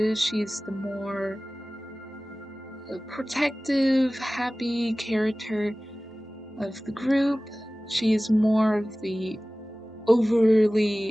she's the more protective, happy character of the group. She's more of the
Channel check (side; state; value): both; normal; correlation 0.97